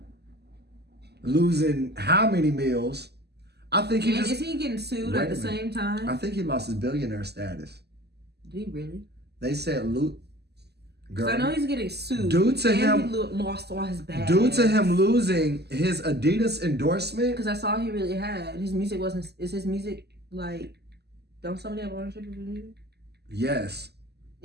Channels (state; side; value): late; left; 0.48 ms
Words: losing how many meals? I think is he getting sued at the same time? I think he lost his billionaire status. Did he really? They said Because I know he's getting sued. Due to him, he lost all his bags. Due to him losing his Adidas endorsement. Because that's all he really had. His music wasn't. Is his music don't somebody have ownership of his music? Yes.